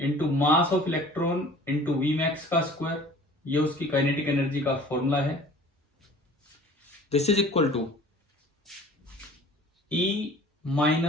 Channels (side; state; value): both; normal; correlation 0.47